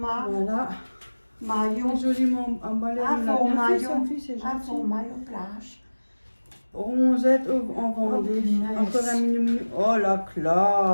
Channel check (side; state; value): both; inverted; correlation -1.00